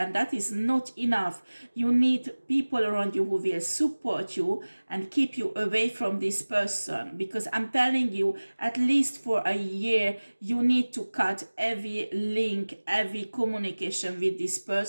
that is not enough. You need people around you who will support you and keep you away from this person, because I'm telling you, at least for a year, you need to cut every link, every communication with this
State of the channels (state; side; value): inverted; both; correlation -1.00